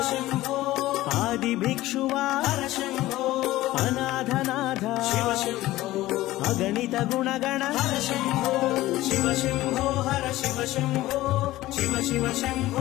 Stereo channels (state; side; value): quieter; right; 16.7 dB